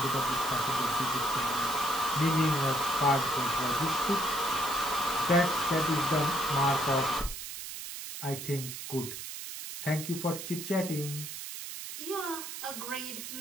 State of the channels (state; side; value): noise; right; hiss, 8 dB below the sound